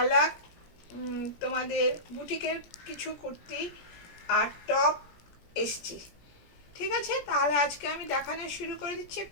তোমাদের বুটিকের কিছু কুর্তি আর টপ এসছি। ঠিক আছে, তাহলে আজকে আমি দেখানো শুরু করে দিচ্ছি,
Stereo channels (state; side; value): late; right; 17 ms